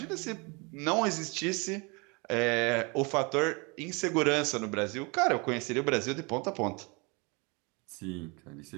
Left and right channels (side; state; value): left; quieter; 29.4 dB